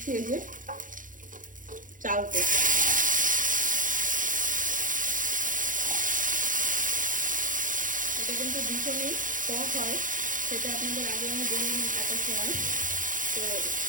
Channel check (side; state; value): left; late; 0.38 ms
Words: এই যে চালতে। এটা কিন্তু ভীষণই টক হয়, সেটা আপনাদের আগে আমি বলিনি কাটার সময়। তো